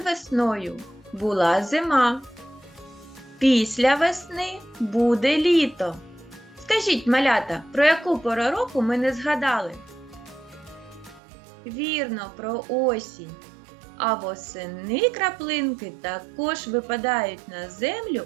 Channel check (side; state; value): left; drops out; at 11.2 s